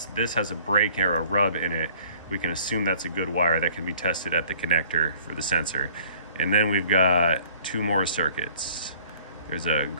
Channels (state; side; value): inverted; both; correlation -0.55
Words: this has a break or a rub in it, we can assume that's a good wire that can be tested at the connector for the sensor. And then we've got two more circuits. There's a